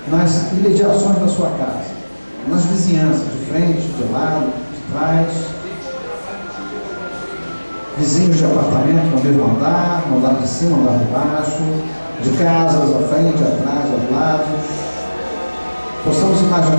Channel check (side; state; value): both; inverted; correlation -1.00